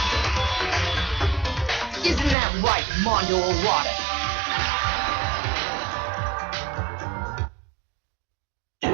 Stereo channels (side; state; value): left; drops out; at 2.4 s